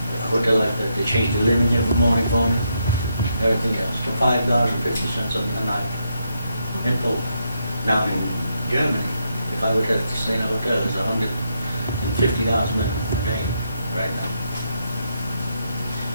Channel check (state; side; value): inverted; both; correlation -0.80